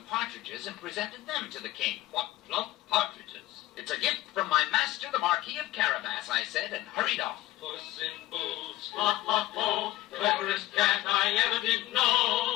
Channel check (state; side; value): quieter; right; 16.4 dB